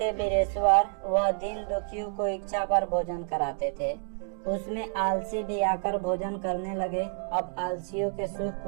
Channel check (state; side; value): silent; left; 55 dB below the other